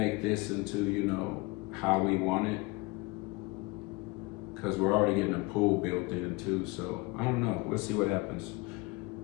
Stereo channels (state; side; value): quieter; right; 24.4 dB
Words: this into, you know, how we want it, because we're already getting a pool built in too, so I don't know. We'll see what happens.